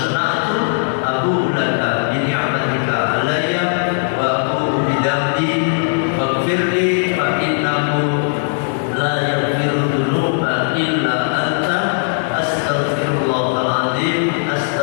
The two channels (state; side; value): silent; right; 68 dB below the other